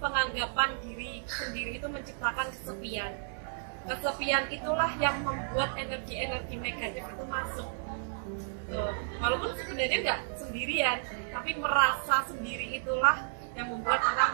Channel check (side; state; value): left; silent; 56 dB below the other